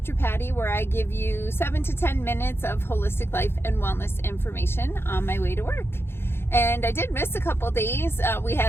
Patty, where I give you 7 to 10 minutes of holistic life and wellness information on my way to work. And I did miss a couple days. We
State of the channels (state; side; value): late; right; 0.11 ms